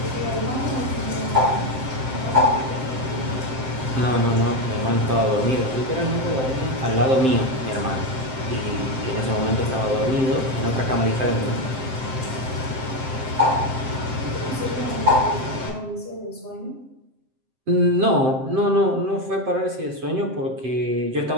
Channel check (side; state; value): left; late; 7.7 ms